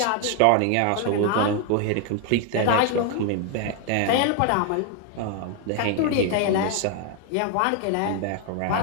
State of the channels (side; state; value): both; different; correlation 0.01